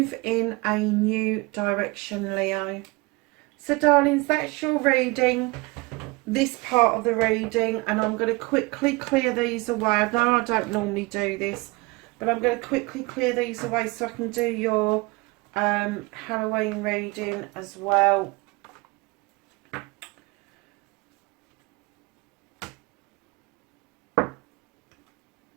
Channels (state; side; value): quieter; left; 25.0 dB